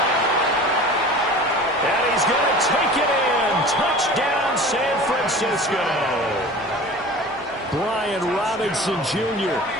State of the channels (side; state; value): both; normal; correlation 0.39